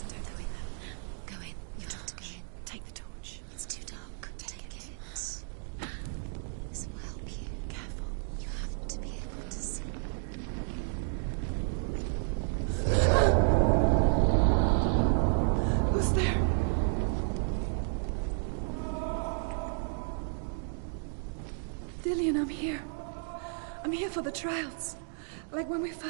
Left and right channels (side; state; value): left; silent; 56 dB below the other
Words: Don't go in there. Go in. You've got to go in. Take the torch. It's too dark. Take it. This will help you. Careful. You have to be able to see. Who's there? Dillian, I'm here. I'm here for the trials. Like when we